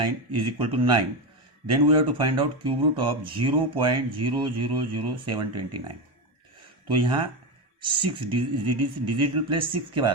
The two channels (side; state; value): both; normal; correlation 0.14